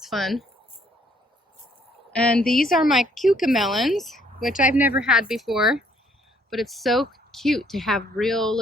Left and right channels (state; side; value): normal; both; correlation 0.65